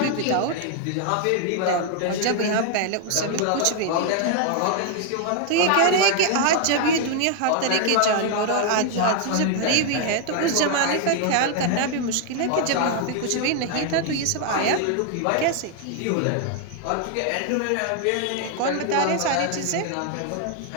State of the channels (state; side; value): different; both; correlation 0.00